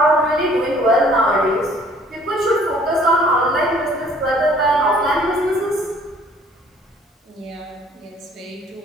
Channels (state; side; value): normal; both; correlation 0.57